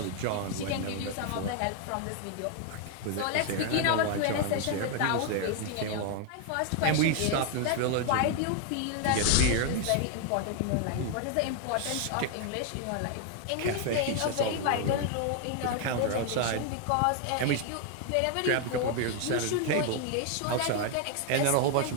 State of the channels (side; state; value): both; different; correlation 0.00